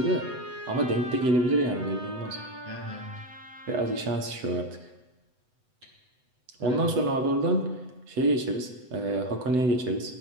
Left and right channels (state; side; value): late; left; 8.0 ms